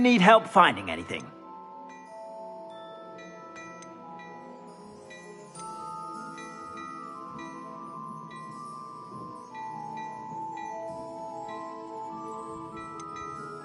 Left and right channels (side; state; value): both; identical; correlation 1.00